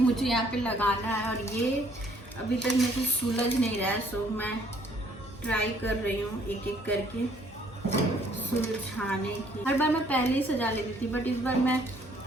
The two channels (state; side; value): normal; both; correlation 0.63